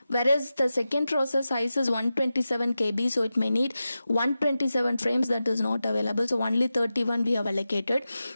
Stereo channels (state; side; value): inverted; both; correlation -0.93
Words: whereas the second process size is 127 KB, so it may need 127 frames. That is not available, so only 31 we have allocated.